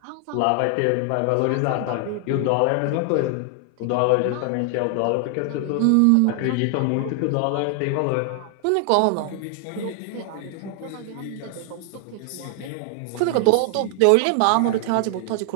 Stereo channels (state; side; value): different; both; correlation 0.00